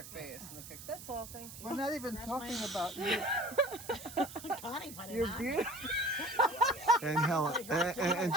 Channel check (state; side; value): noise; right; hiss, 13 dB below the sound